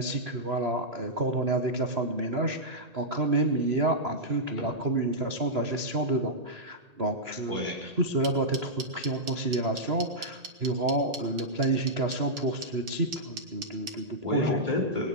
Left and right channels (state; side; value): late; left; 1.8 ms